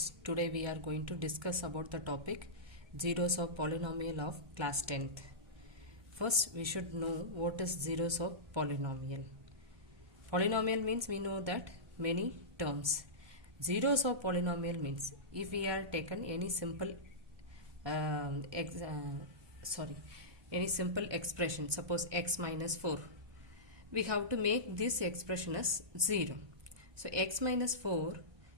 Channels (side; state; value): left; late; 1.2 ms